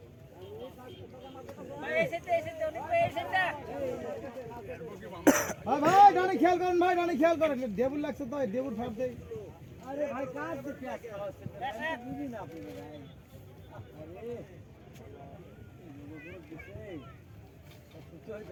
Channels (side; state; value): both; identical; correlation 1.00